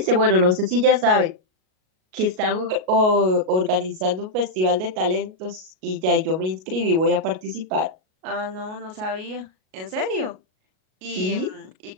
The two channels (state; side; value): late; left; 38 ms